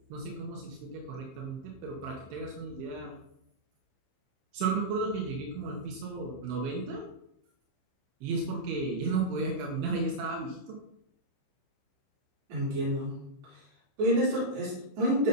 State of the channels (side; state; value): left; late; 15 ms